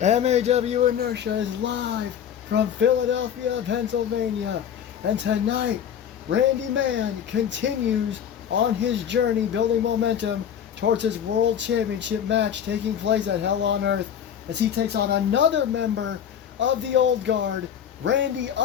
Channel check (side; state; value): right; quieter; 8.9 dB